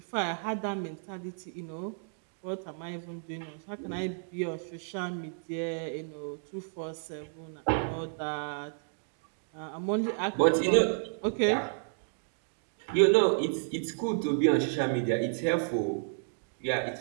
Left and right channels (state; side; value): silent; left; digital silence